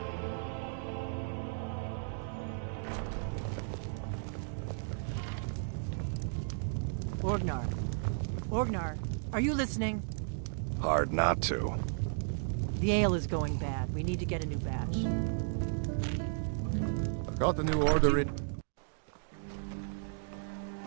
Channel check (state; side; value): silent; left; digital silence